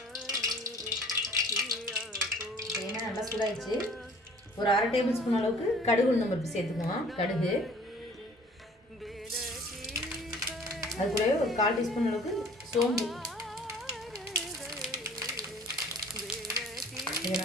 எண்ணெய் நல்லா சூடாகிடுச்சு. ஒரு 1/2 டேபிள் ஸ்பூன் அளவுக்கு கடுகு உளுந்தம் பருப்பு சேர்த்துக்குவோம். கடுகு அது கூடவே ஒரு 1/4 டீஸ்பூன் அளவுக்கு சோம்பு. இது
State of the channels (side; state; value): both; normal; correlation 0.51